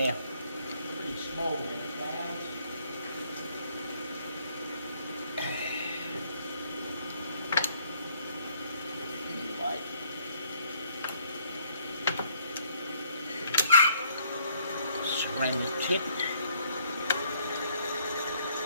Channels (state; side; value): inverted; both; correlation -0.66